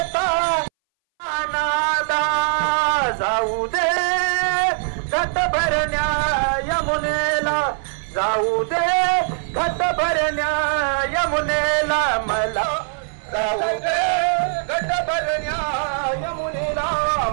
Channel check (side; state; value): left; silent; 62 dB below the other